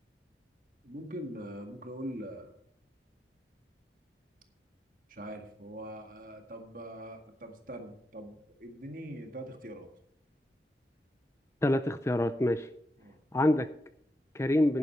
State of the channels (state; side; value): normal; both; correlation 0.85